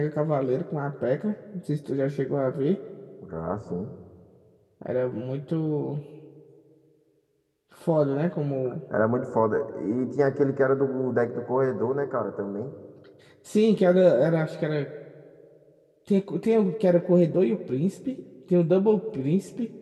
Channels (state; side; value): identical; both; correlation 1.00